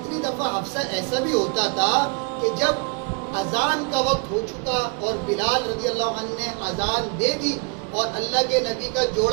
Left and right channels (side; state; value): left; quieter; 35.3 dB